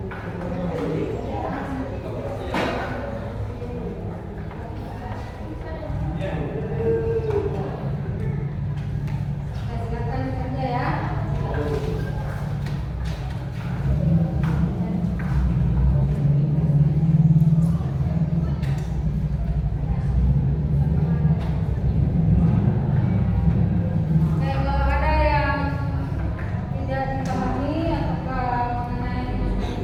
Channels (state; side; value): identical; both; correlation 1.00